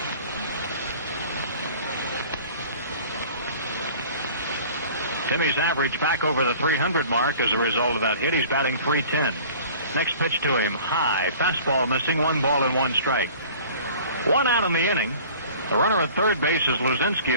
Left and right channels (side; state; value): both; inverted; correlation -0.46